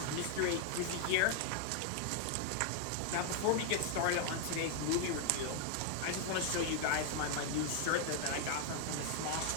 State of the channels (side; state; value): both; different; correlation 0.00